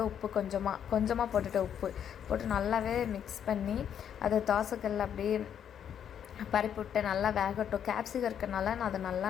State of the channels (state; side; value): quieter; right; 8.9 dB